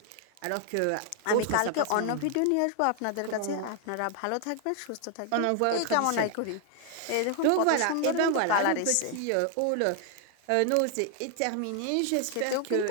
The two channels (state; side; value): different; both; correlation 0.00